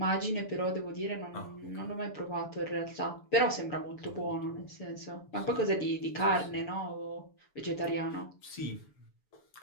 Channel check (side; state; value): right; late; 7.0 ms